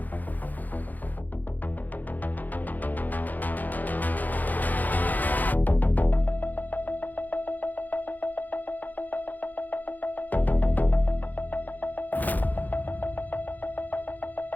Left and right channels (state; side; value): late; right; 0.083 ms